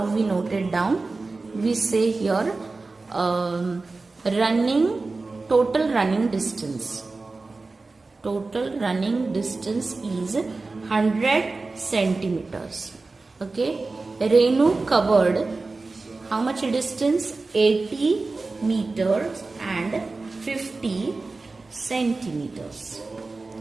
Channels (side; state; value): left; quieter; 3.6 dB